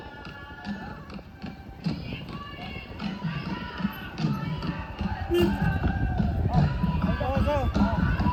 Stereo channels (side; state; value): both; identical; correlation 1.00